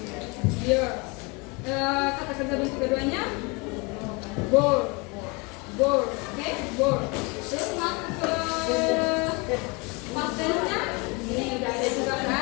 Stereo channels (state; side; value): quieter; right; 28.8 dB